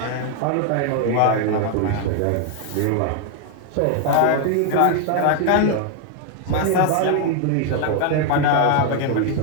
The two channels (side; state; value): both; different; correlation 0.00